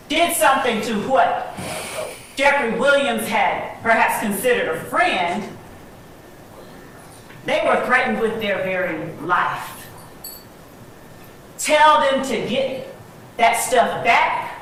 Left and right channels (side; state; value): both; identical; correlation 1.00